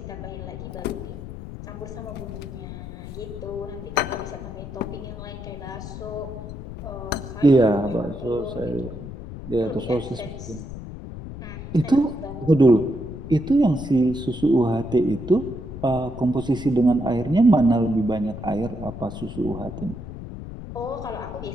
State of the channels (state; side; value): noise; left; rumble, 10 dB below the sound